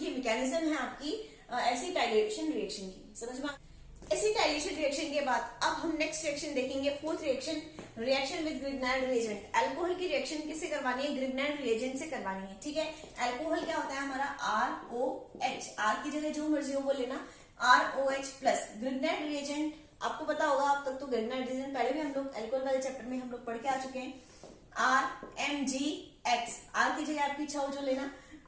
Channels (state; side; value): identical; both; correlation 1.00